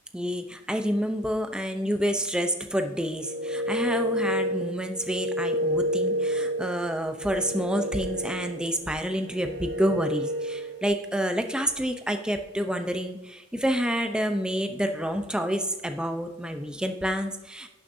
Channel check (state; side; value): normal; both; correlation 0.54